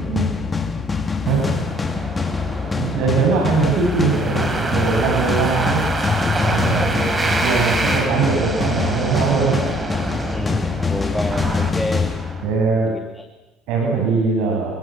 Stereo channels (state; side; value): normal; both; correlation 0.61